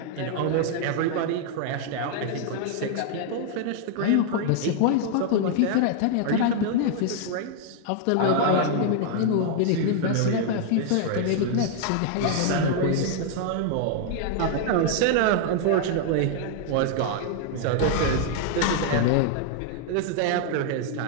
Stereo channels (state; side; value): different; both; correlation 0.00